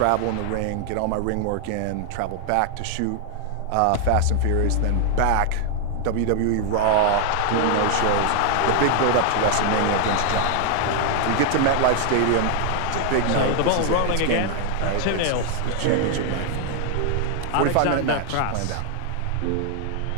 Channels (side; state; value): both; different; correlation 0.00